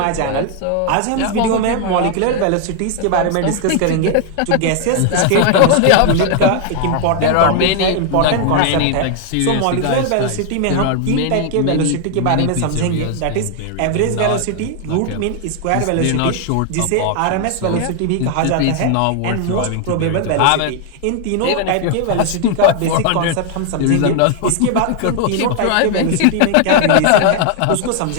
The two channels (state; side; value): different; both; correlation 0.00